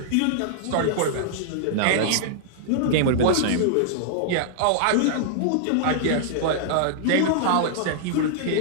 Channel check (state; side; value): different; both; correlation -0.01